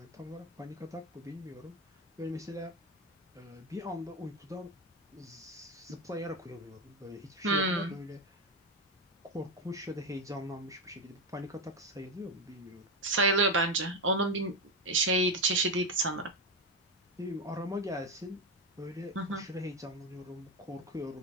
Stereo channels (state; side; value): normal; both; correlation 0.11